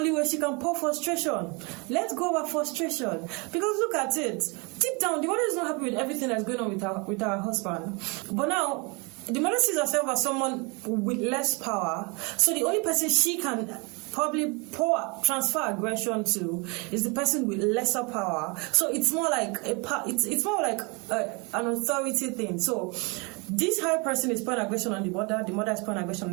way she can pour frustration. Let go of her frustration. Because look at it. Deep down, the mother is not happy with everything that's going on with her husband. But now, the mother sees herself as someone with less power. So the only person she can probably transfer aggression to is the person with lesser power. So it's more like it's more like an authority thing. So this high person is pouring aggression on the mother is pouring aggression on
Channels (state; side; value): quieter; left; 30.2 dB